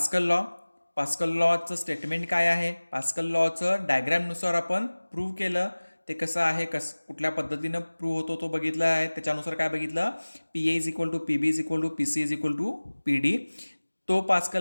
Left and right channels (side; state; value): both; inverted; correlation -1.00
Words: लॉचं स्टेटमेंट काय आहे, पास्कल लॉचं डायग्रॅमनुसार आपण प्रूव्ह केलं, ते कसं आहे, कुठल्या पद्धतीनं प्रूव्ह होतो तो बघितला आहे. त्याच्यानुसार काय बघितलं, PA is equal to PB is equal to PC is equal to PD. तो